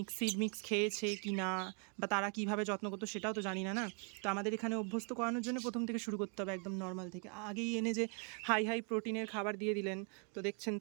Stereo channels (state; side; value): quieter; left; 38.1 dB